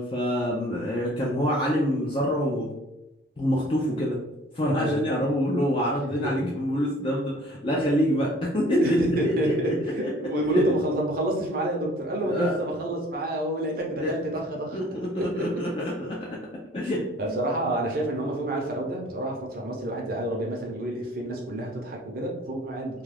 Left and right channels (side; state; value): both; normal; correlation 0.53